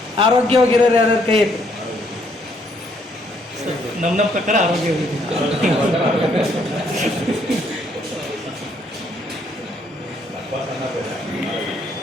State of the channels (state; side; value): normal; both; correlation 0.69